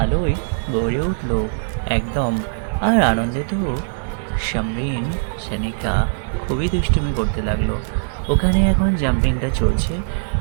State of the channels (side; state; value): left; silent; digital silence